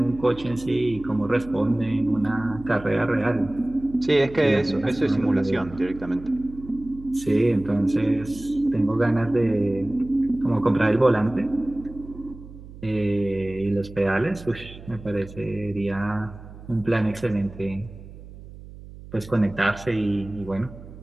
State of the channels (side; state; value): right; noise; hum, 16 dB below the sound